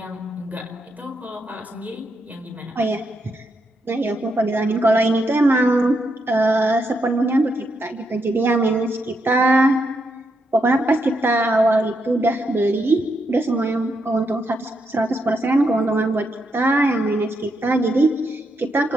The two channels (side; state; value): both; normal; correlation 0.81